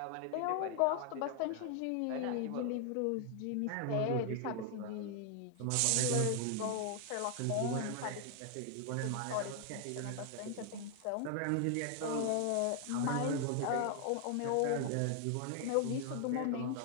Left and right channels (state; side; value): different; both; correlation 0.00